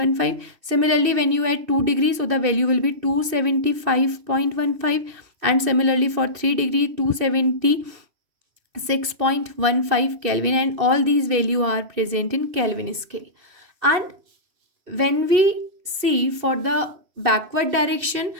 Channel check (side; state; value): left; late; 2.7 ms